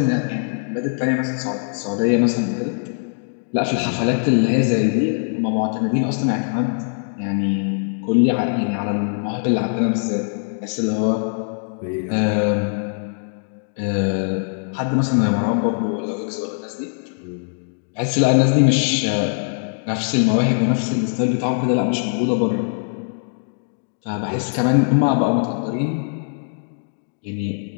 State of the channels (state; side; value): silent; right; digital silence